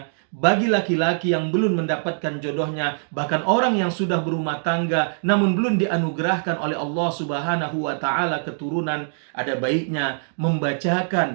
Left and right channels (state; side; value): silent; left; digital silence